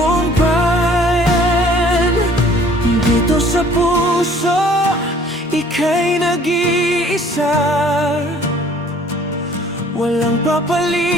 Dito sa puso, ika'y nag-iisa. Walang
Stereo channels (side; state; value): both; normal; correlation 0.55